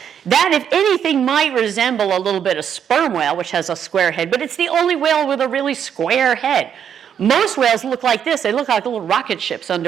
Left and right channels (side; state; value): left; quieter; 8.5 dB